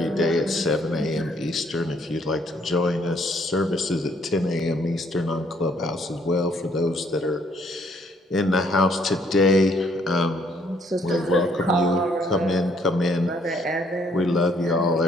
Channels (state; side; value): normal; both; correlation 0.67